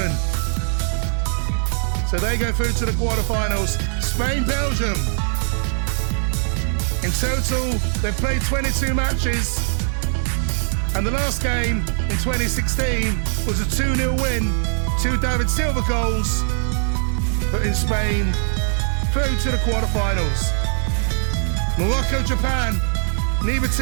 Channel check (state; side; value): silent; left; 65 dB below the other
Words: So they go through to the quarterfinals. Spain, Belgium. In total, they've played 22 matches. And the last game in 2016 was a 2-0 win. 2 David Silva goals, putting Spain through to the quarterfinals. Morocco, Japan, neither